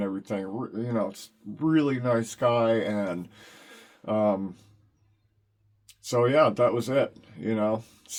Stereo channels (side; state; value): both; identical; correlation 1.00